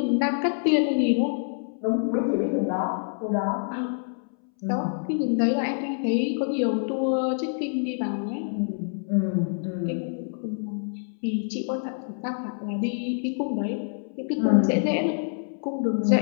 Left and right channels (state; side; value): silent; right; 61 dB below the other